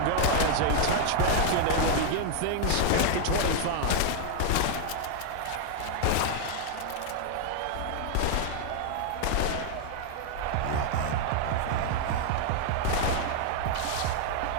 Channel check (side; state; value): both; different; correlation 0.00